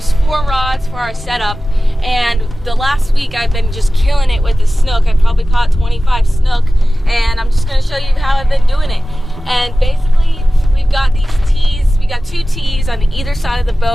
4 rods for our setup, and the last week I've been just killing it with the snook. I probably caught 25 snook, and I'm just going to show you how I've been doing it. And basically we've got these tees. We got 2 tees on either side of the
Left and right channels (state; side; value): normal; both; correlation 0.96